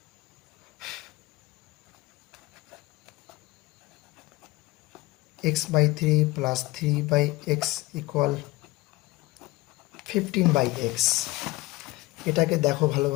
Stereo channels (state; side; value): quieter; right; 20.4 dB